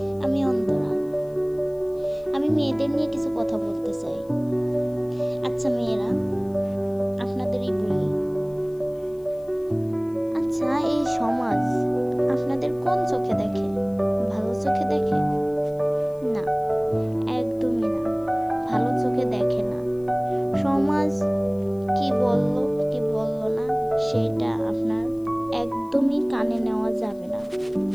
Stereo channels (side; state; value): left; noise; hiss, 29 dB below the sound